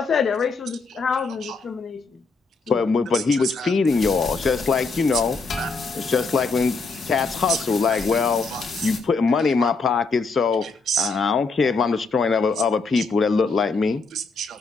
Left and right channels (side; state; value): right; quieter; 4.1 dB